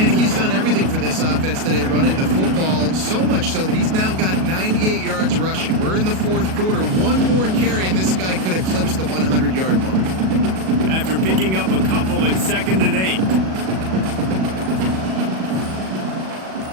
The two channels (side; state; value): left; late; 37 ms